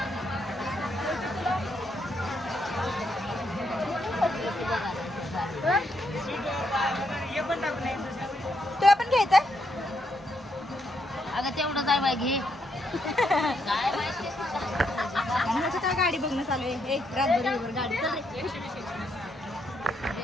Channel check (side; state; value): both; normal; correlation 0.77